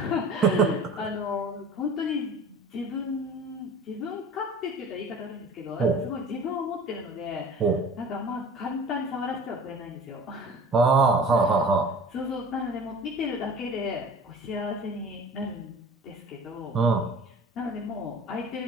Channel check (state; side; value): normal; both; correlation 0.42